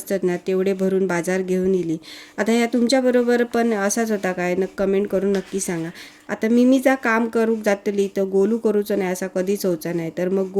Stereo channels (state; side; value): identical; both; correlation 1.00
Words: ना तेवढे भरून बाजार घेऊन इली. आता ह्या तुमच्याबरोबर पण असाच होता काय कमेंट करून नक्की सांगा. आता मिमीचा काम करूक जातली तर गोलू करूचं नाही असा कधीच होचा नाही. तर मग